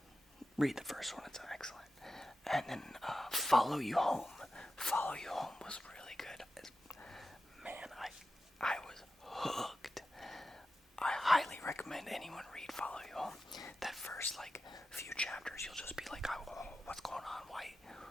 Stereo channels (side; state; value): both; normal; correlation 0.92